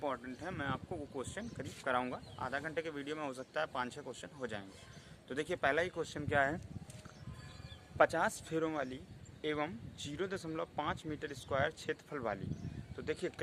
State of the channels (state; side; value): identical; both; correlation 1.00